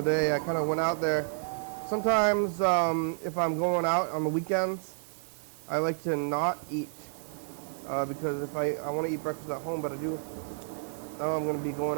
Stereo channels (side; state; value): left; silent; 58 dB below the other